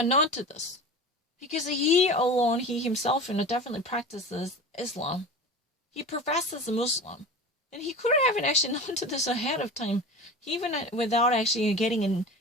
to this? Because he alone, he himself, definitely practices Islam. He professes a Muslim. And he could have actually known to this ahead of time, even without actually getting an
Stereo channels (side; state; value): both; normal; correlation 0.33